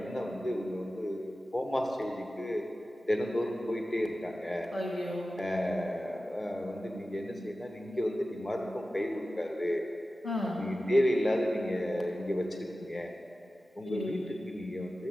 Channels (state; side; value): normal; both; correlation 0.95